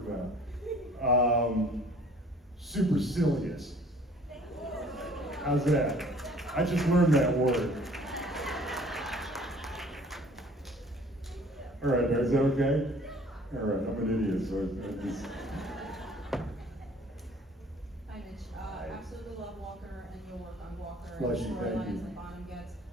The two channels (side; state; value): both; normal; correlation 0.53